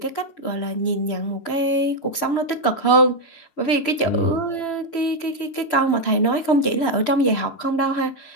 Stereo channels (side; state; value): right; late; 6.7 ms